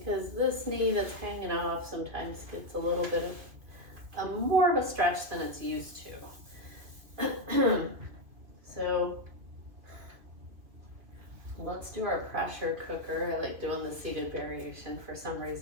this knee that's hanging off sometimes gets a little bit of more of a stretch than it's used to. So let's do our pressure cooker. I like doing the seated variation. For some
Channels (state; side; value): late; left; 2.4 ms